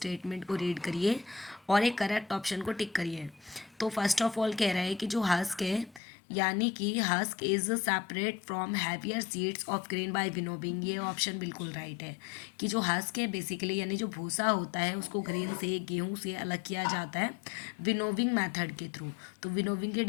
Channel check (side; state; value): right; drops out; at 6.0 s